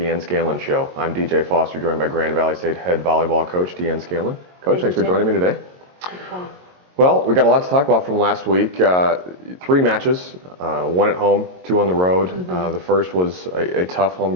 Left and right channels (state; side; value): late; left; 22 ms